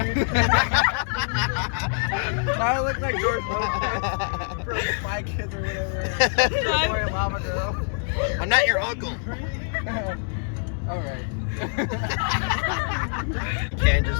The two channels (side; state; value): right; silent; 62 dB below the other